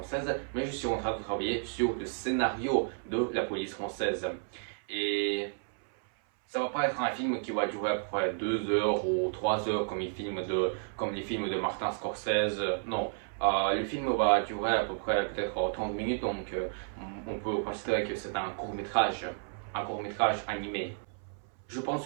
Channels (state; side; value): silent; left; 57 dB below the other